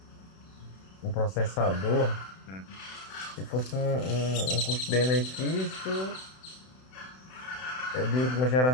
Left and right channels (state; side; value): late; right; 31 ms